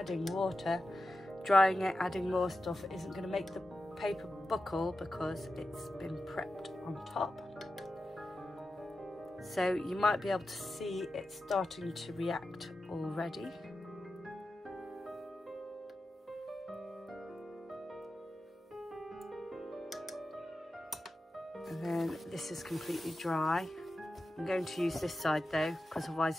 water, drying it, adding more stuff isn't going to make the paper buckle because it's been prepped on top. So you might be able to see it starting to react already. And then this is completely dry. I'm going to use this side though, because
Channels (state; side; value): normal; both; correlation 0.92